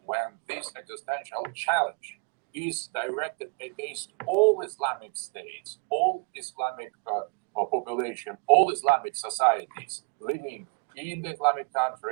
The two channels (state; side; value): quieter; left; 35.8 dB